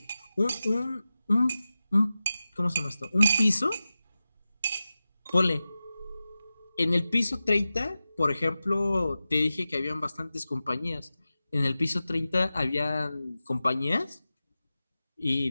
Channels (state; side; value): inverted; both; correlation -0.94